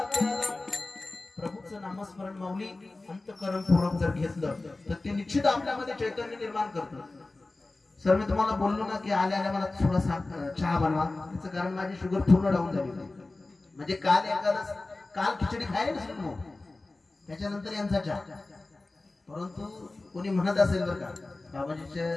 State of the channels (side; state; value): right; quieter; 3.2 dB